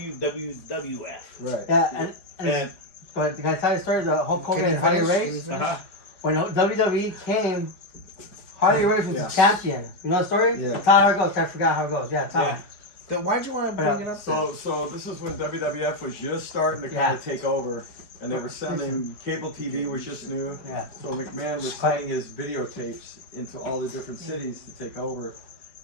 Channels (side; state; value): right; late; 4.9 ms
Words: Right. Yeah, and And but can I tell you a story of the Hulk Hogan Can you and Harley finish? Race? uh-huh. When WWE came, Harley Race was Yeah. the champion. You know the story? Yeah. Tell how it goes. I forgot how it goes. Yeah, tell Yeah. me. Then why'd you want to bring it up? So this is when WWF was just starting to kind of take over, and they were sending cable TV was just new. Yeah. So McMahon was sending his videotapes into all the different cities to take over,